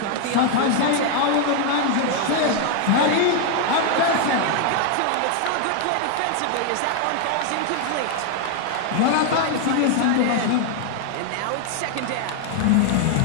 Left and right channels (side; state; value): both; different; correlation 0.00